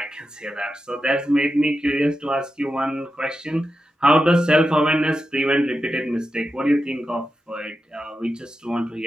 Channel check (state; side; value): normal; both; correlation 0.90